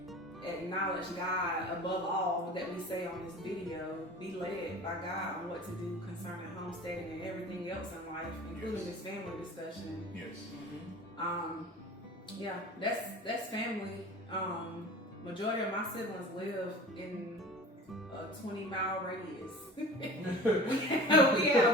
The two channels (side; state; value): both; normal; correlation 0.40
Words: acknowledge God above all that we say on this video. Be led by God on what to do concerning homesteading and everything else in life, including this family discussion. Yes. That's family. Majority of my siblings live in a 20-mile radius. we